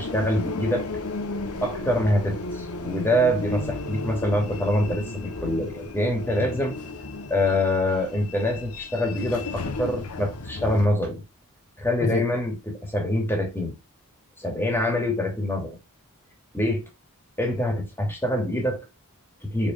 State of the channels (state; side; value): normal; both; correlation 0.66